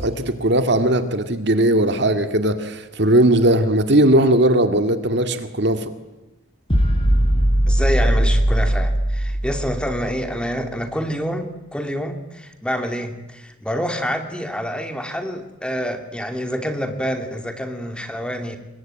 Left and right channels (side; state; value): both; normal; correlation 0.50